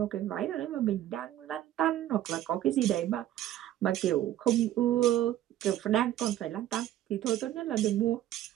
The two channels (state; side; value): quieter; left; 12.7 dB